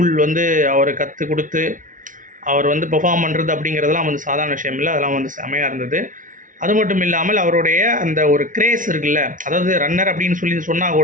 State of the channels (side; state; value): left; late; 0.38 ms